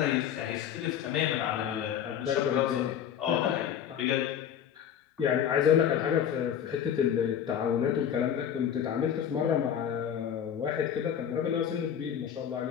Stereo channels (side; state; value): right; quieter; 9.1 dB